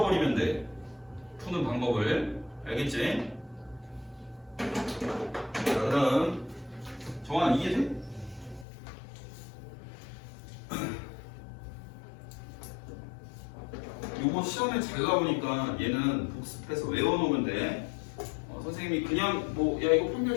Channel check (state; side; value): drops out; right; at 8.7 s